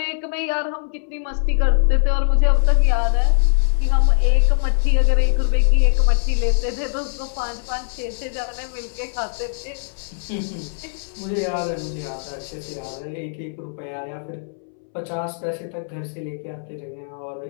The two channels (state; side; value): silent; right; 65 dB below the other